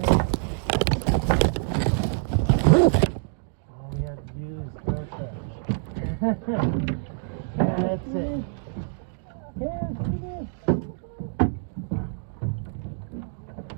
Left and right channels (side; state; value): left; silent; digital silence